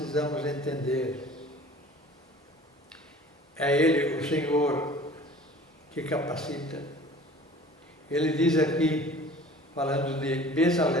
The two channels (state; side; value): normal; both; correlation 0.46